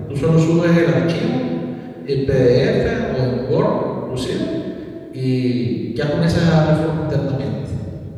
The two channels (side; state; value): both; identical; correlation 1.00